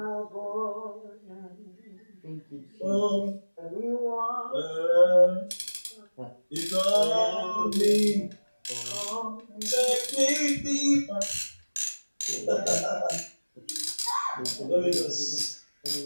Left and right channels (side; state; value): both; inverted; correlation -1.00